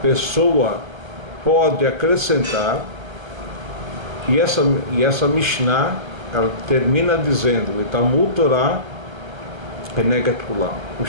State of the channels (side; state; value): left; late; 1.2 ms